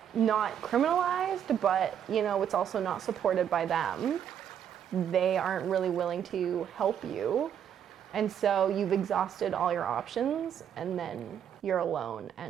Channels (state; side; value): quieter; left; 9.0 dB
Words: not criminalized, but it's also not supported by them. They aren't really willing to help you. And so you've exhausted all your options, and then you're alone